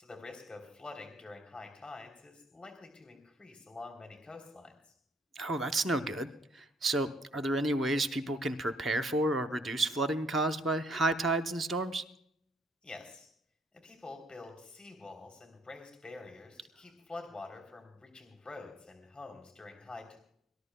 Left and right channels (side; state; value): both; normal; correlation 0.66